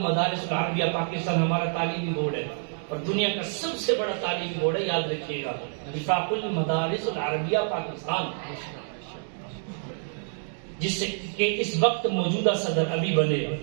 العربیہ پاکستان، ہمارا تعلیمی بورڈ ہے اور دنیا کا سب سے بڑا تعلیمی بورڈ ہے، یاد رکھیے گا، وفاق المدارس العربیہ پاکستان، جس سے کہ اس وقت موجودہ صدر ابھی بنے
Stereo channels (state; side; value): silent; left; 60 dB below the other